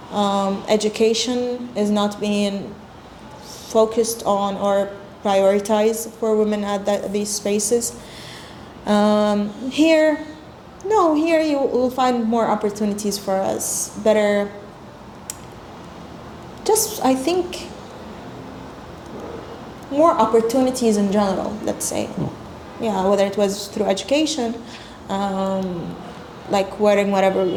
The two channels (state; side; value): identical; both; correlation 1.00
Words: Education is not being focused on or prioritized for women at these spaces. Here you will find more opportunities for us, better, just I think more opportunities in general, let's say. Yeah, whether it was through education, like wearing whatever